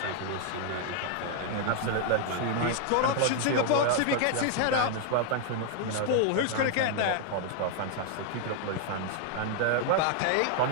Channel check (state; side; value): different; both; correlation 0.00